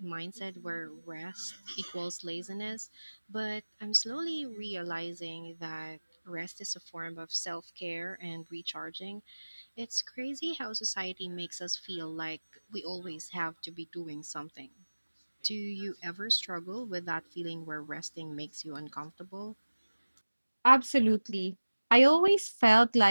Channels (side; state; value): both; inverted; correlation -1.00